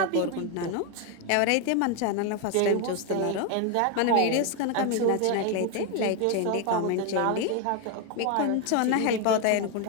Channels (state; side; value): different; both; correlation 0.01